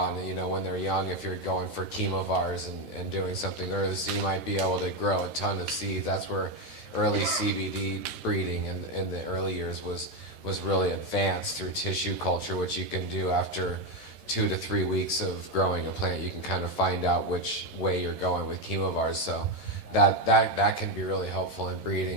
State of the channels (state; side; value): late; left; 13 ms